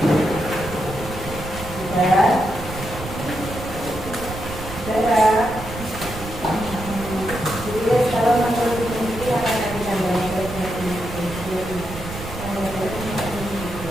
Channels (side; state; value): right; noise; rumble, 10 dB below the sound